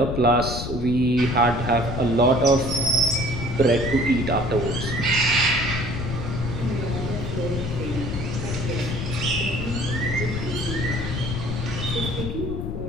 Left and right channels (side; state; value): left; noise; rumble, 5 dB below the sound